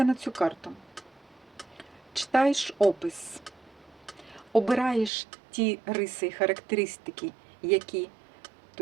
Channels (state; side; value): drops out; left; at 5.1 s